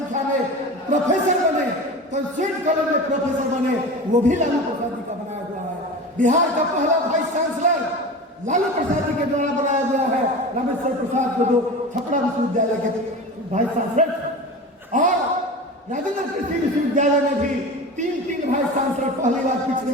में प्रोफेसर बने, कंस्टिट्यूट कॉलेज में प्रोफेसर बने, वो भी लालू प्रसाद जी का बनाया हुआ है। बिहार का पहला वाइस चांसलर लालू प्रसाद जी के द्वारा बनाया गया है, रामेश्वर प्रसाद को, जो छपरा विश्वविद्यालय के वाइस चांसलर थे। और राजेंद्र कृषि विश्वविद्यालय में भी 3 वाइस चांसलर पहली बार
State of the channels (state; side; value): normal; both; correlation 0.31